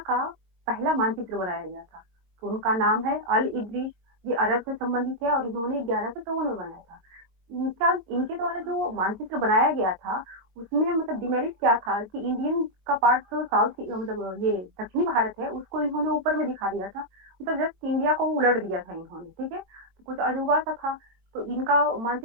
का पहला मानचित्र बनाया गया था। तो उनका नाम है अल इदरीस। ये अरब से संबंधित है और इन्होंने 1154 में बनाया था। इनका इनके द्वारा जो मानचित्र बनाया गया था उसमें मतलब डिमेरिट क्या था कि इंडियन का पार्ट जो साउथ मतलब ये दक्षिणी भारत है उसको इन्होंने ऊपर में दिखा दिया था, मतलब जस्ट इंडिया को उलट दिया था इन्होंने, ठीक है। तो कुछ अजूबा सा था, तो इनका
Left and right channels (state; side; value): late; left; 22 ms